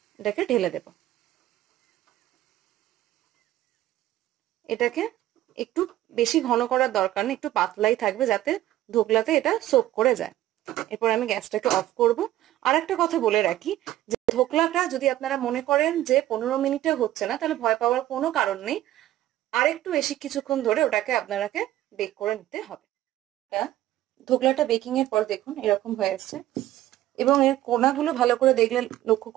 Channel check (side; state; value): left; quieter; 14.2 dB